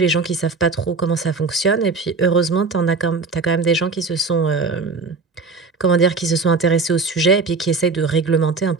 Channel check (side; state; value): left; quieter; 4.2 dB